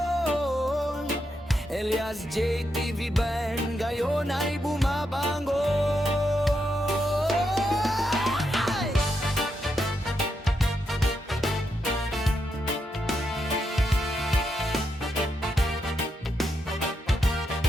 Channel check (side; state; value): both; normal; correlation 0.83